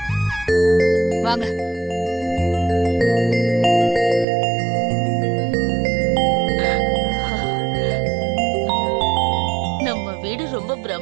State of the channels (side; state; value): left; drops out; at 4.2 s